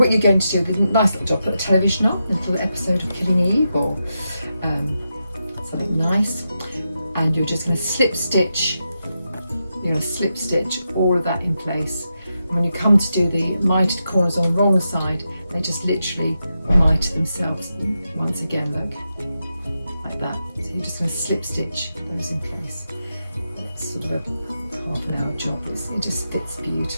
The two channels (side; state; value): both; inverted; correlation -0.87